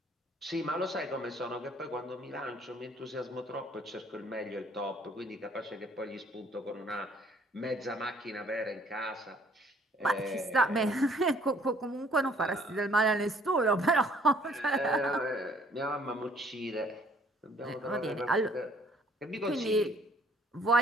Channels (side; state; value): both; normal; correlation 0.60